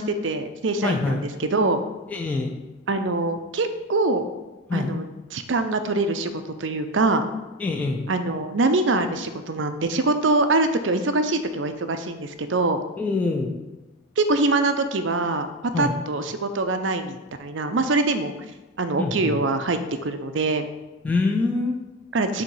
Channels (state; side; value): normal; both; correlation 0.14